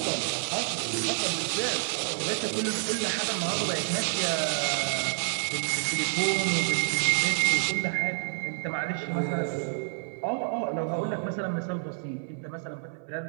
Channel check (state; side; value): silent; left; 56 dB below the other